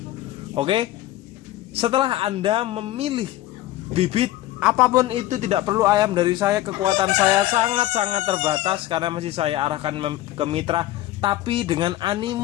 Oke, setelah Anda memilih bibit apapun itu, tidak perlu ayam dari saya, kekuatan saya sangat-sangat terbatas karena masih saya arahkan ke mitra. Tapi dengan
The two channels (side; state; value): right; quieter; 15.1 dB